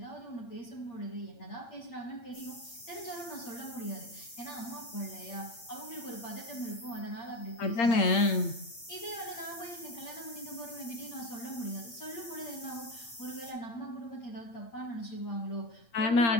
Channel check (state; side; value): late; right; 8.7 ms